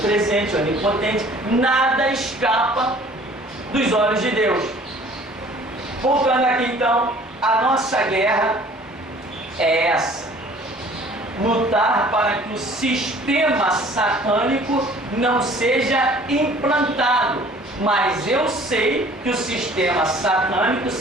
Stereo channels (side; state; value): both; normal; correlation 0.52